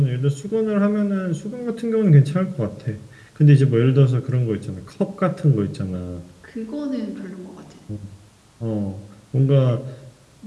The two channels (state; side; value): identical; both; correlation 1.00